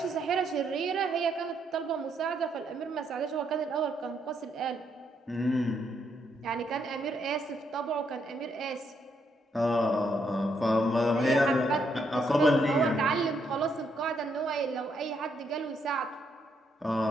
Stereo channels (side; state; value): both; normal; correlation 0.75